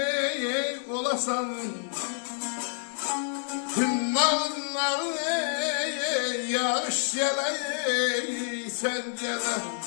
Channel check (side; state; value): right; silent; 59 dB below the other